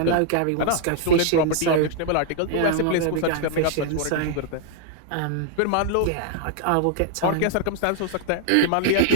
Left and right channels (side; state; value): both; different; correlation 0.00